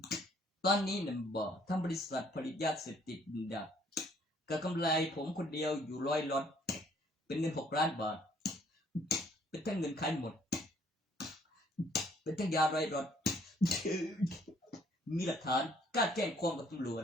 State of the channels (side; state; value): both; normal; correlation 0.63